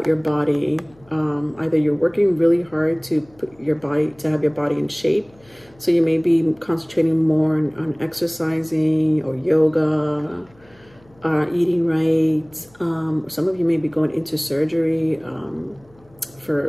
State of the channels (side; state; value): left; noise; hum, 29 dB below the sound